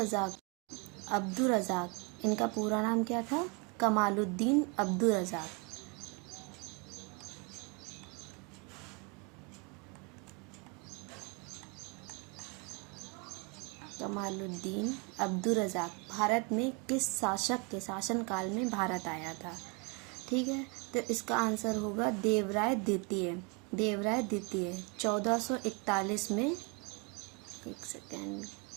रज़ाक इनका पूरा नाम क्या था? कमालुद्दीन अब्दुर रज़ाक। कमालुद्दीन अब्दुर रज़ाक भारत में किस शासक के शासनकाल में भारत आया था? ठीक है, तो इसका आंसर होगा देवराय द्वितीय। 1441 में, एक सेकेंड,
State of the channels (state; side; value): quieter; left; 31.6 dB